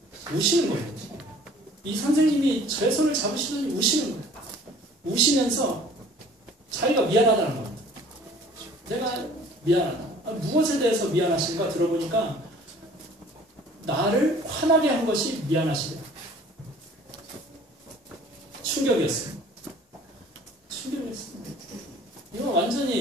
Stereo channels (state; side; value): normal; both; correlation 0.51